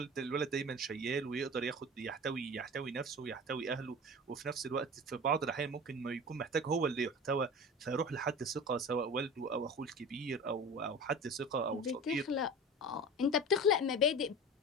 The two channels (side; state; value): both; normal; correlation 0.34